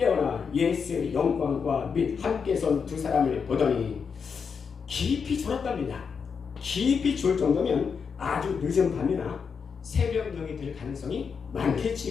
예수의 영광과 및 함께 선 두 사람을 보더니 깊이 졸았답니다. 깊이 졸 정도면 아주 늦은 밤이나 새벽녘이 될 가능성이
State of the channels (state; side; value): quieter; right; 6.0 dB